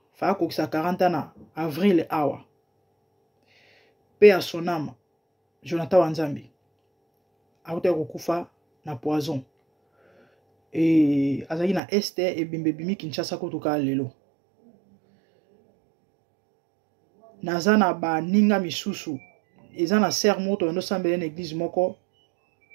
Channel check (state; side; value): drops out; left; at 11.8 s